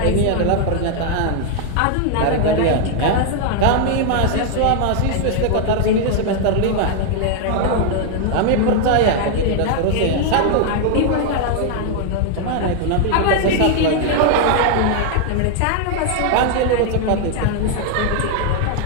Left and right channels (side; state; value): both; different; correlation 0.00